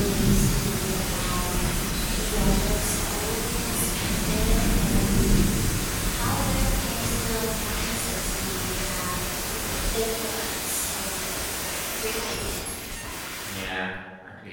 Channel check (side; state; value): both; identical; correlation 1.00